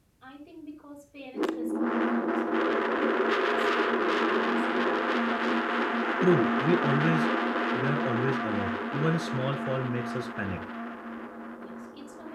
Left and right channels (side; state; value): both; identical; correlation 1.00